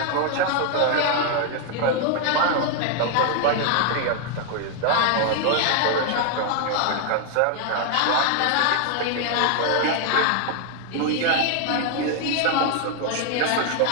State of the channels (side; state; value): both; different; correlation 0.00